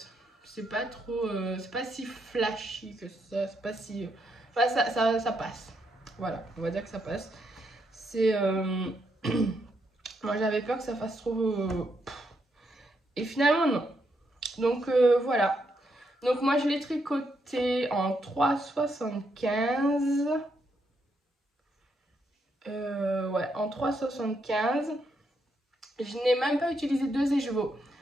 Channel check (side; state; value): both; normal; correlation 0.78